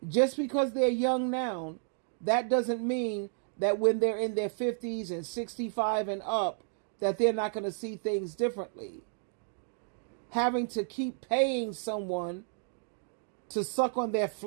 Just because they're young now, that doesn't mean that when they're in their 50s and 65 and up, that they're not going to see things differently. Having to keep paying someone to suck on their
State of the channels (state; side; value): silent; left; digital silence